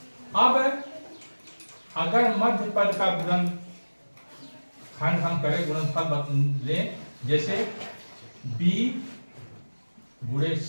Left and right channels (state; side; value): inverted; both; correlation -1.00